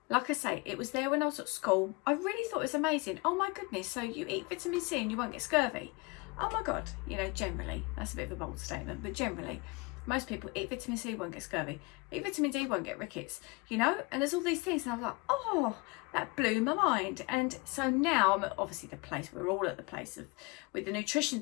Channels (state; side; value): quieter; right; 27.3 dB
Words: like I say, it was there when I was at school. I really thought it was amazing. Oh my goodness, so you eat vitamin C and you won't get scurvy. Oh my God, you know, generally, that's a bit of a bold statement, but generally, most people eat vitamin C, won't get scurvy. Eat vitamin D, won't get rickets, you know? And there's all these things, and I was like, oh, that blew my mind. And so now I'm at obviously the place, we're all at the place of, with the nutrition